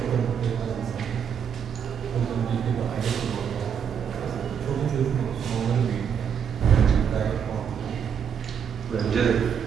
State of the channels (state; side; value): quieter; left; 7.6 dB